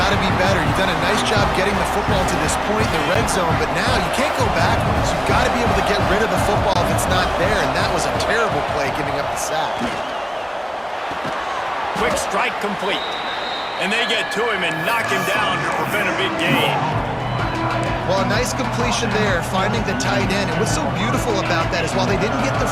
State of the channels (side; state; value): both; identical; correlation 1.00